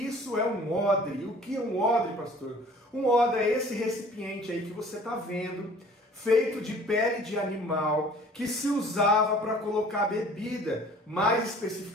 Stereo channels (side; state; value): both; normal; correlation 0.50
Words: é um odre. O que é um odre, pastor? Um odre é esse recipiente aí que você está vendo, feito de pele de animal, que se usava para colocar bebida, mais